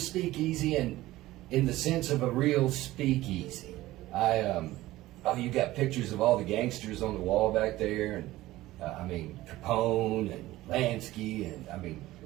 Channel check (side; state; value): left; quieter; 16.8 dB